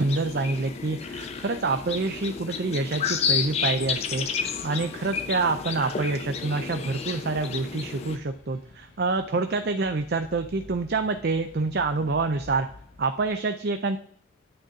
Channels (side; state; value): both; normal; correlation 0.17